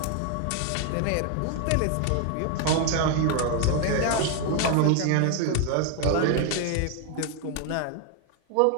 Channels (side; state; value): both; different; correlation 0.01